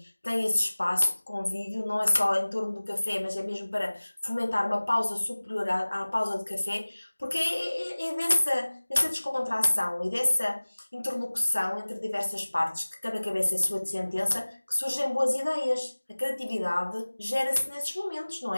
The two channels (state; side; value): inverted; both; correlation -1.00